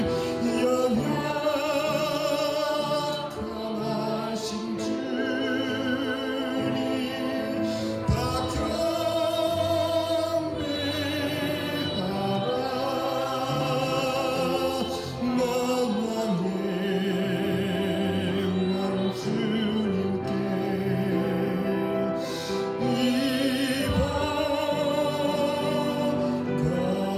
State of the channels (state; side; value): identical; both; correlation 1.00